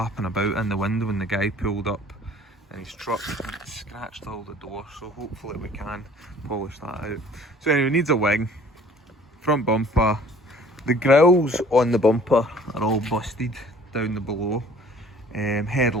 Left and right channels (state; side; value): normal; both; correlation 0.52